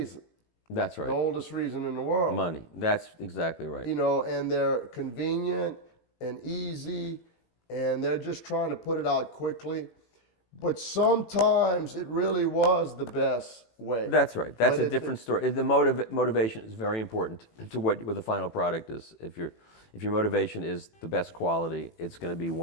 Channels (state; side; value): late; right; 18 ms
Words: That's The right. oldest reason in the world. Money. That's exactly right. You know, and they're convenient and easy, and they're just trying to put it out quickly. But sometimes it really was the best way. That's right. That's But a different story. The motivation is very important to what the final product is. If your motivation is the best quality, it's going to be